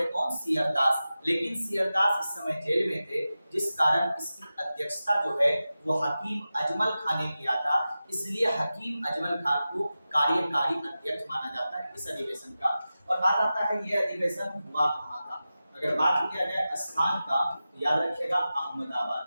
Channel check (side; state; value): both; inverted; correlation -0.94